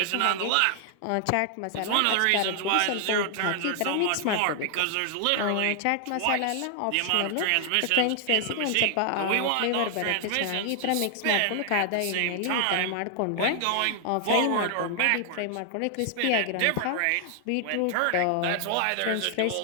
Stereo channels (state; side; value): different; both; correlation 0.00